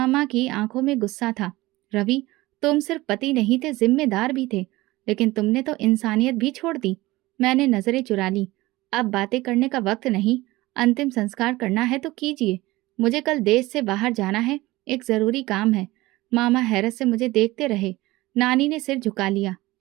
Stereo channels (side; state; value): left; quieter; 19.4 dB